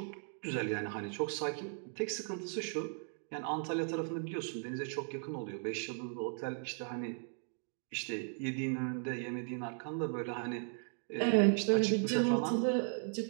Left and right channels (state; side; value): silent; left; 53 dB below the other